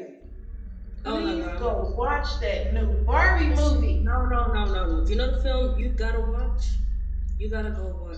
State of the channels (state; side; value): identical; both; correlation 1.00